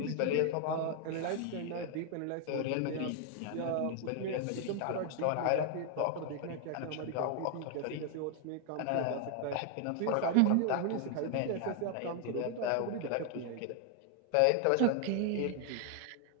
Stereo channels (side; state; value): both; different; correlation 0.00